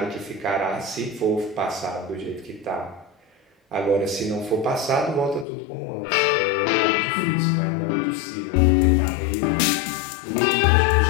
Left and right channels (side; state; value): right; drops out; at 5.5 s